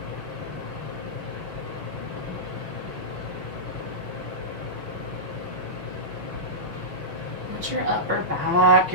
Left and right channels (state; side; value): late; left; 6.4 ms